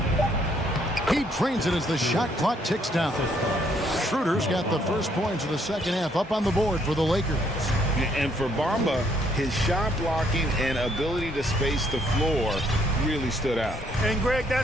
He trains it as the shot clock ticks down. Schroeder's got the first points of the second half up on the board for the Lakers. And for Bamba, his shot blocking and ability to space the floor really stood out. And Greg,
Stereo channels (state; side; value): normal; both; correlation 0.68